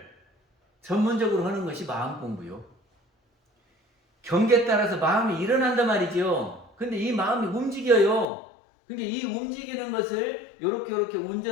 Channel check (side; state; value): right; drops out; at 8.2 s